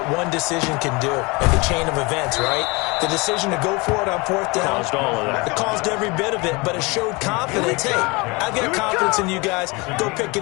one decision can do in the chain of events, right? The decision to go for it on 4th down. Caused all of that. It caused every bit of it, but it showed confidence. Hey, I've got confidence in you guys. Go pick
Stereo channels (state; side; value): quieter; right; 26.4 dB